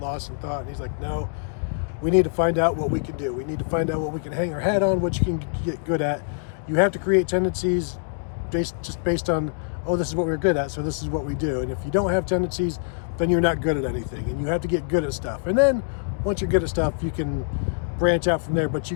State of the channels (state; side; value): silent; right; digital silence